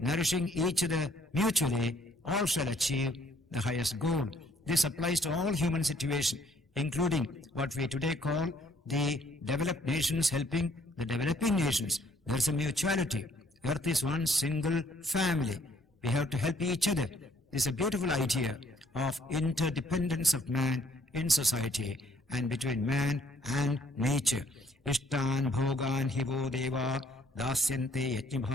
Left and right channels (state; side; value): normal; both; correlation 0.64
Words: nourishing each other mutually, all shall achieve the highest goal. This applies to all human situations, including what we today call the developed nations helping the developing nations. There is a mutuality. Earth is one single family. We have to help each other. This is a beautiful idea of interdependence of man in society and between man and nature. Ishtan bhogan hivo deva dasyante yajna